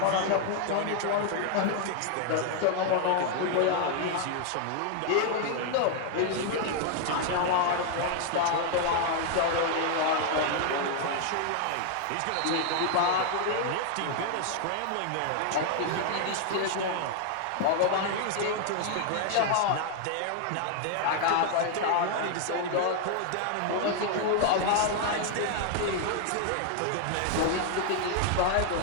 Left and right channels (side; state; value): both; different; correlation 0.00